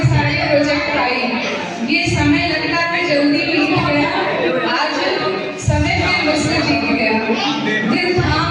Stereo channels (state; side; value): identical; both; correlation 1.00